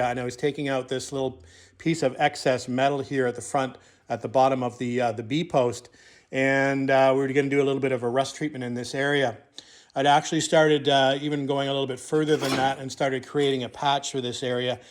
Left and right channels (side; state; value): both; identical; correlation 1.00